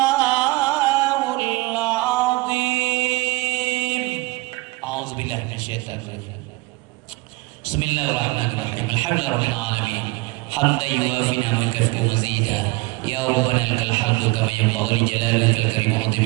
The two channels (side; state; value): left; quieter; 22.7 dB